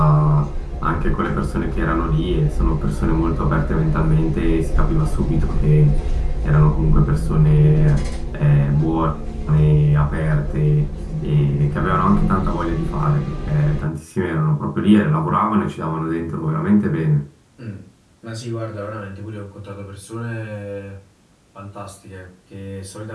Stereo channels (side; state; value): both; identical; correlation 1.00